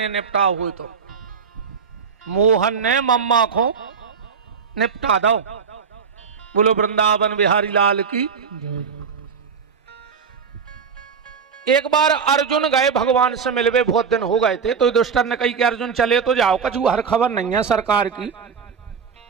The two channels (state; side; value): quieter; left; 6.1 dB